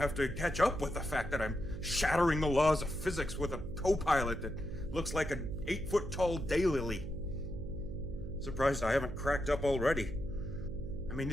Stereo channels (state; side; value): noise; right; hum, 10 dB below the sound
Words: to catch up with the fact that I'm shattering the laws of physics with a co-pilot that looks like an 8-foot-tall daylily. Surprised I haven't cracked up already. I mean,